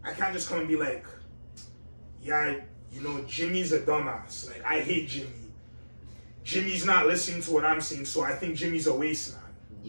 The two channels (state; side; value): inverted; both; correlation -1.00